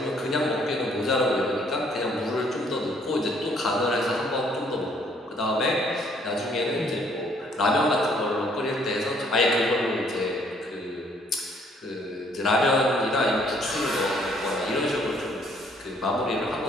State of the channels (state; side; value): normal; both; correlation 0.64